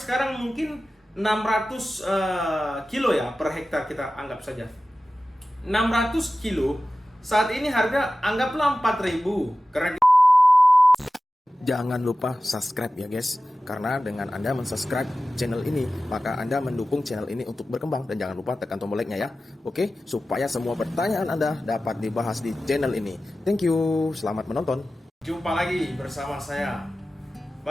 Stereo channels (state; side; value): normal; both; correlation 0.95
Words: mungkin 600 kilo ya per hektar, kita anggap saja. 600 kilo saat ini harga anggaplah 4.000. Karena Jangan lupa subscribe ya guys, karena dengan Anda mensubscribe channel ini, maka Anda mendukung channel ini untuk berkembang. Dan jangan lupa tekan tombol like-nya ya, oke? Supaya semua pertanyaan Anda dapat dibahas di channel ini. Thank you, selamat menonton. jumpa lagi bersama saya.